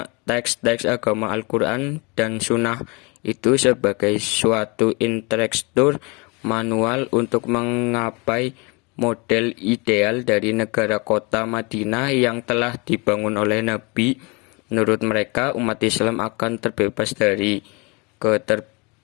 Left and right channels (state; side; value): quieter; right; 28.8 dB